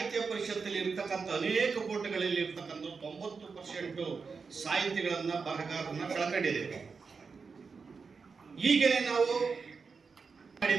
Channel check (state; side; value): quieter; left; 5.1 dB